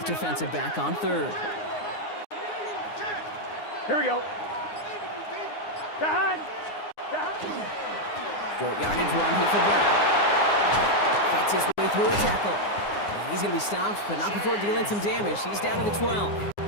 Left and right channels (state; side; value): late; right; 9.7 ms